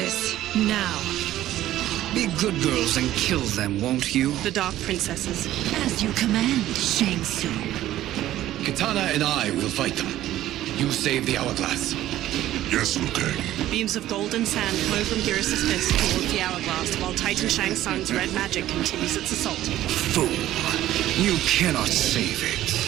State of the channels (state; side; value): quieter; left; 13.8 dB